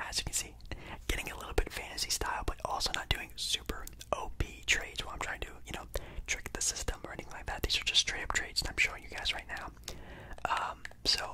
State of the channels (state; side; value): identical; both; correlation 1.00